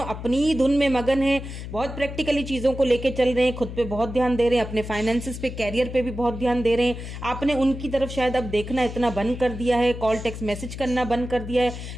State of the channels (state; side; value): noise; left; hum, 9 dB below the sound